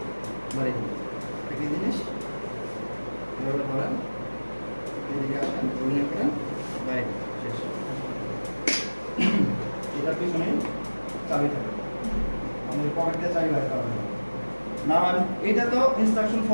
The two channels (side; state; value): both; inverted; correlation -1.00